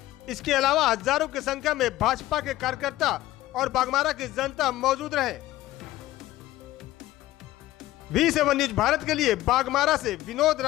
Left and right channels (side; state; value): right; quieter; 15.8 dB